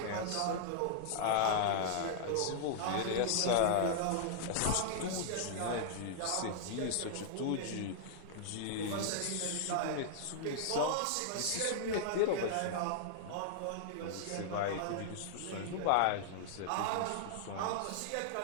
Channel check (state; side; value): different; both; correlation -0.01